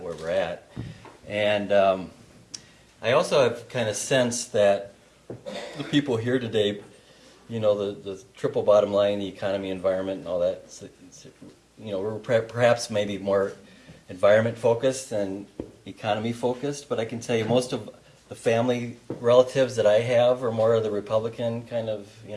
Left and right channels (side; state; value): both; identical; correlation 1.00